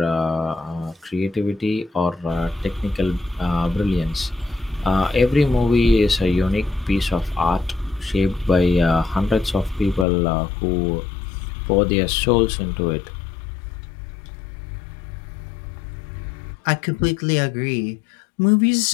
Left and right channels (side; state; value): right; drops out; at 10.1 s